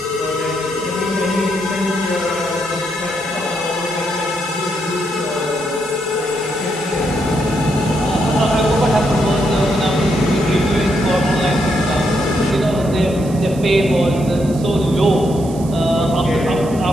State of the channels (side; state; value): right; noise; hiss, 18 dB below the sound